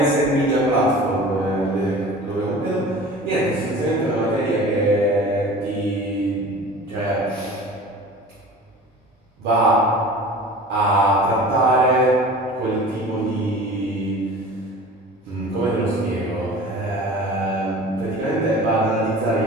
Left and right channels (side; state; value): both; normal; correlation 0.40